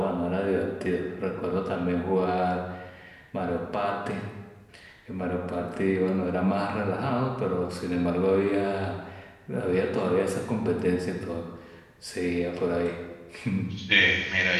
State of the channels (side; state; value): both; identical; correlation 1.00